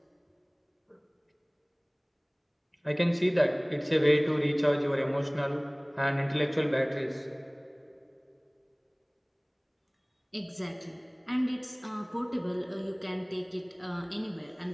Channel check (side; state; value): both; identical; correlation 1.00